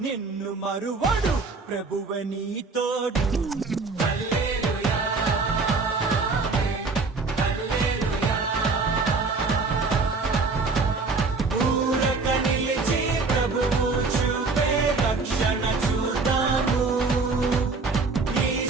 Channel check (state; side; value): quieter; left; 4.1 dB